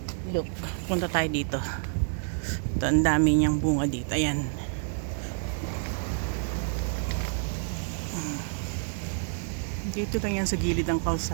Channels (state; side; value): silent; left; 59 dB below the other